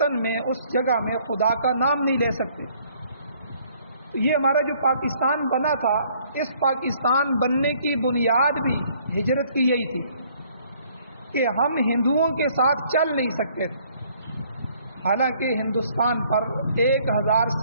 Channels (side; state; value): both; inverted; correlation -0.62